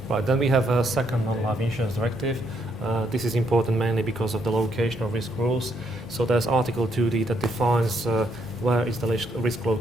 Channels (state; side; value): normal; both; correlation 0.74